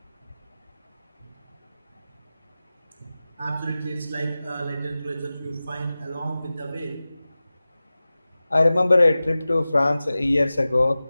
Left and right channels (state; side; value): inverted; both; correlation -0.96